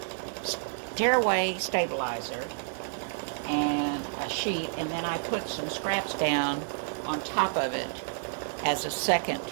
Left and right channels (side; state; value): left; silent; digital silence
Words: tearaway stabilizer and a sheet, and then I put some scraps down on top of it as a second